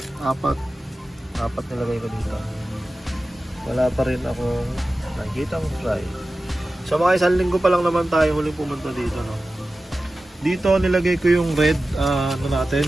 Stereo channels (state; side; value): normal; both; correlation 0.95